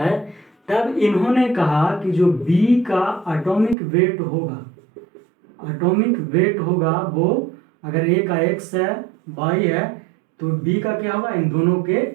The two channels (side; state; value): left; drops out; at 3.8 s